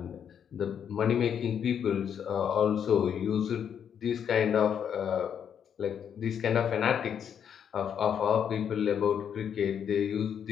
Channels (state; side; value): quieter; right; 8.3 dB